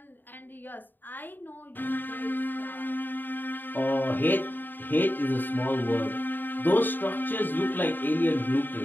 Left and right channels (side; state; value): right; late; 0.092 ms